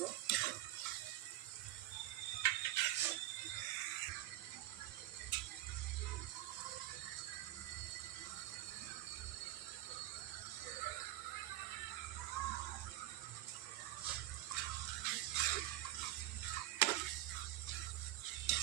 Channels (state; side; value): quieter; left; 15.8 dB